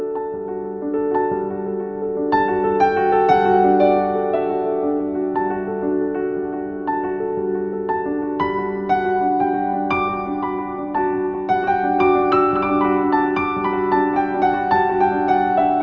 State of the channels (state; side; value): identical; both; correlation 1.00